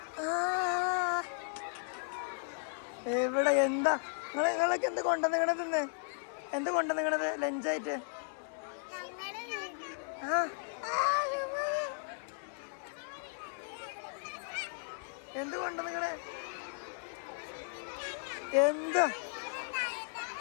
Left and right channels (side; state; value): right; silent; digital silence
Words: ആ എവിടെ എന്താ നിങ്ങളൊക്കെ എന്ത് കൊണ്ടുവന്നിങ്ങണത്? ഇന്ന് എന്ത് കൊണ്ടുവന്നിങ്ങണത് ലഞ്ചായിട്ട്? ആ എന്ത് കൊണ്ടുവന്നിങ്ങണേ? എന്താ